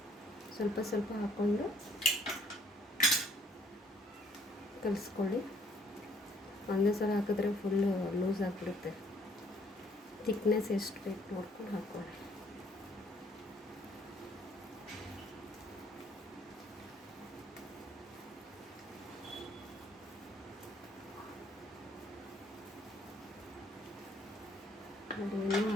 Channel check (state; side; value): normal; both; correlation 0.63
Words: ಸ್ವಲ್ಪ ಸ್ವಲ್ಪ ಹಾಕ್ಕೊಂಡು ಕಲಿಸ್ಕೊಳ್ಳಿ. ಒಂದೇ ಸಲ ಹಾಕಿದ್ರೆ ಫುಲ್ಲು ಲೂಸ್ ಆಗಿಬಿಡುತ್ತೆ. ಥಿಕ್ನೆಸ್ ಎಷ್ಟು ಬೇಕು ನೋಡ್ಕೊಂಡು ಹಾಕ್ಕೊಳ್ಳಿ. ನೋಡಿ, ಇನ್ನೂ